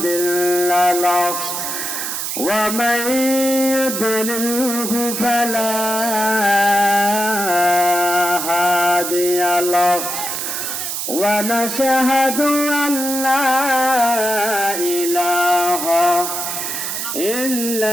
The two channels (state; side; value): noise; right; hiss, 3 dB below the sound